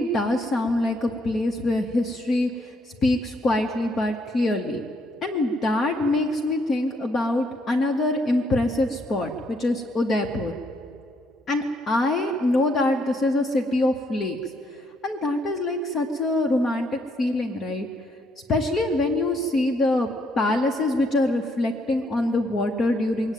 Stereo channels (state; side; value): normal; both; correlation 0.72